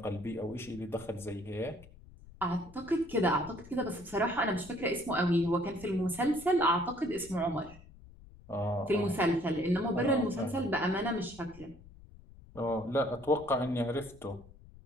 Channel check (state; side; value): noise; left; rumble, 20 dB below the sound